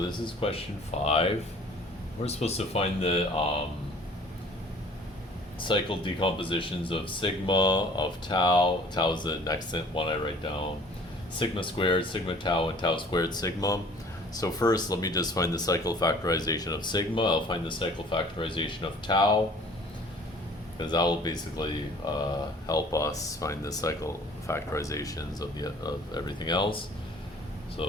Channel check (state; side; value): normal; both; correlation 0.52